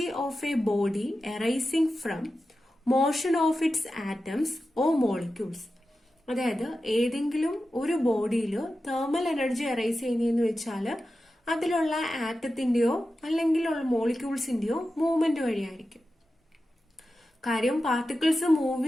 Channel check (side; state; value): both; normal; correlation 0.92